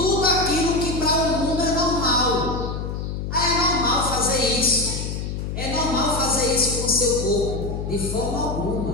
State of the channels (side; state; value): left; noise; hum, 4 dB below the sound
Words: aquilo que para o mundo é normal. É normal fazer isso. É normal fazer isso com o seu corpo. De forma